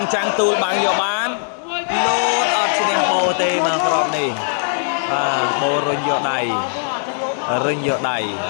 tu bằng nhiều bán lốt ở trên bồ tê mà còn này bồ rinh vô đầy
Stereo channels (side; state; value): right; silent; digital silence